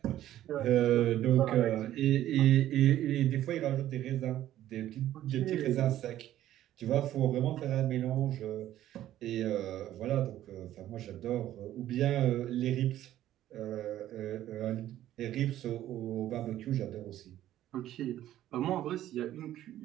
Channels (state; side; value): quieter; left; 13.0 dB